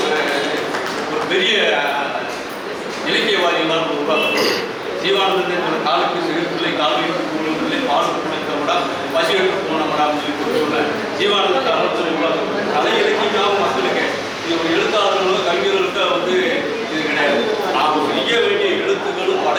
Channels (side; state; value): both; identical; correlation 1.00